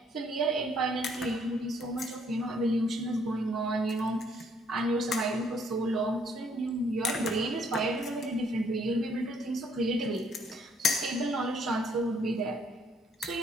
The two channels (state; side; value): normal; both; correlation 0.66